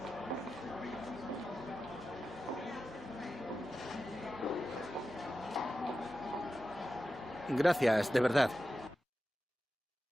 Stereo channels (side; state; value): both; normal; correlation 0.92